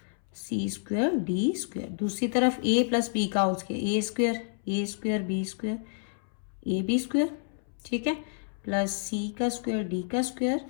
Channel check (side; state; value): right; silent; 58 dB below the other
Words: सी स्क्वायर डी स्क्वायर, दूसरी तरफ ए प्लस बी का whole square, A square B square A B square, ठीक है, प्लस सी का स्क्वायर डी का square